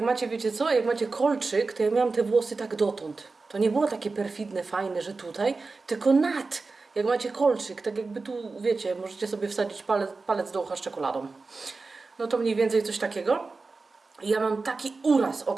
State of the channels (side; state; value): left; quieter; 3.9 dB